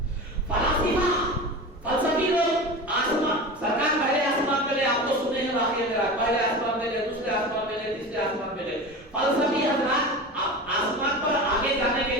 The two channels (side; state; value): both; normal; correlation 0.30